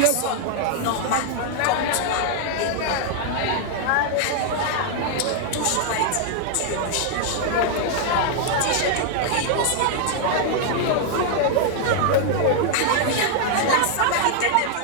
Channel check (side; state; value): both; different; correlation 0.00